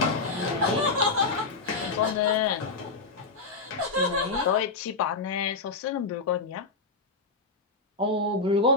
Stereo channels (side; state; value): right; quieter; 3.9 dB